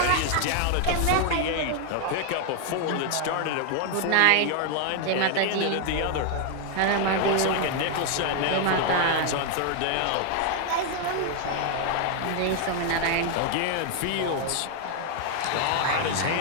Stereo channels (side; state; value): both; different; correlation 0.00